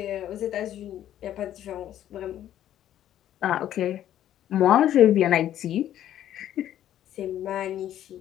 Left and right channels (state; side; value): quieter; right; 11.6 dB